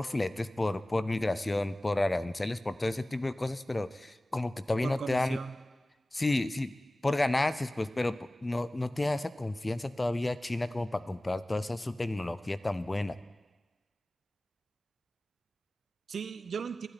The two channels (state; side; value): normal; both; correlation 0.98